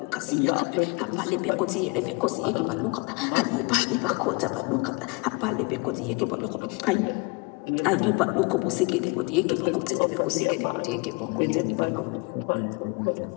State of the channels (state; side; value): quieter; right; 29.8 dB